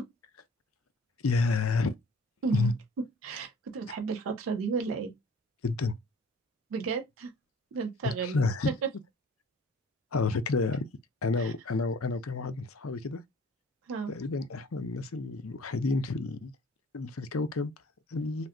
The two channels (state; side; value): normal; both; correlation 0.51